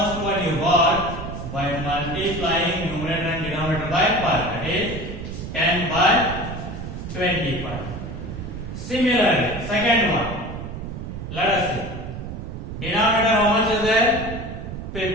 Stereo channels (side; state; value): right; noise; rumble, 8 dB below the sound